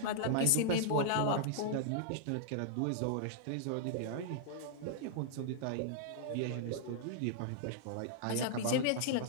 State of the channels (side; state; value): both; different; correlation -0.01